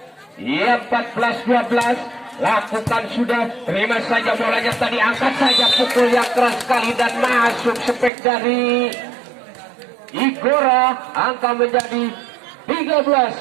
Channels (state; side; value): drops out; left; at 8.1 s